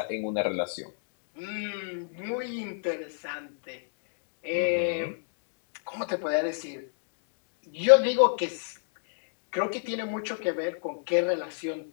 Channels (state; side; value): silent; right; digital silence